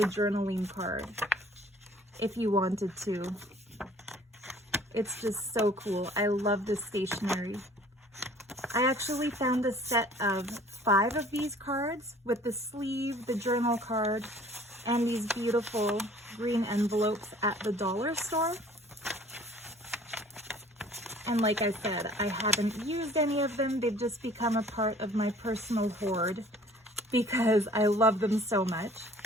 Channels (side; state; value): both; normal; correlation 0.52